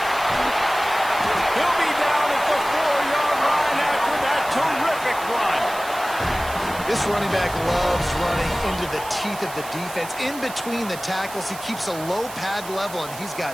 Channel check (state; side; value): noise; right; hiss, 14 dB below the sound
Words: He'll be down at the 4-yard line after that terrific run. This running back loves running into the teeth of the defense. In between the tackles, he keeps a low pad level, and he's